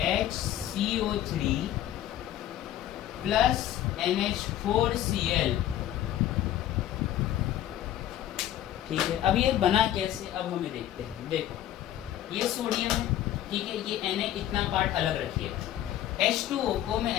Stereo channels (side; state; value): right; quieter; 12.3 dB